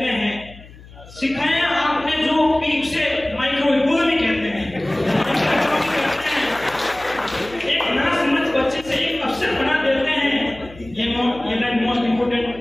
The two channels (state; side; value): noise; left; hum, 20 dB below the sound